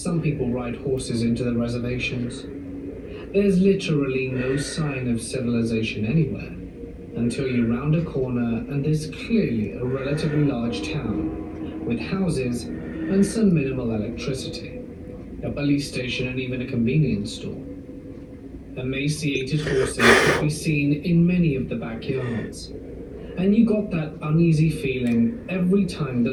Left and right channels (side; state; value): both; identical; correlation 1.00